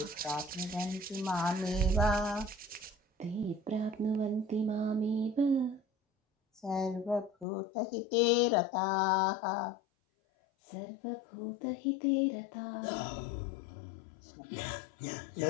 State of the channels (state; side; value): drops out; right; at 7.5 s